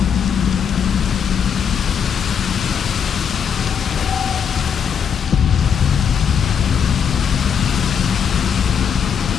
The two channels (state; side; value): quieter; right; 7.4 dB